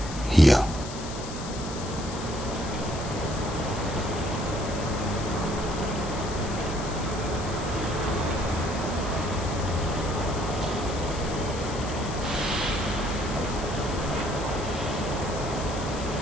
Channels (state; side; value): noise; left; hiss, 12 dB below the sound